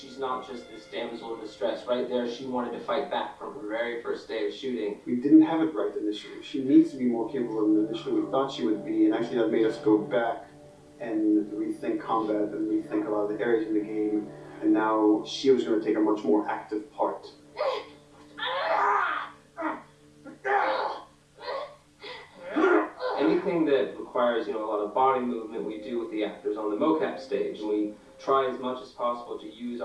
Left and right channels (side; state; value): both; identical; correlation 1.00